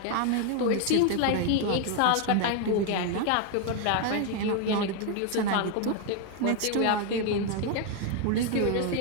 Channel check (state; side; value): different; both; correlation 0.01